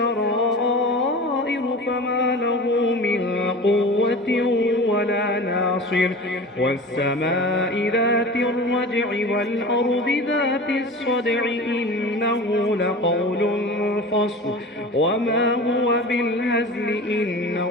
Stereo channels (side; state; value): both; normal; correlation 0.35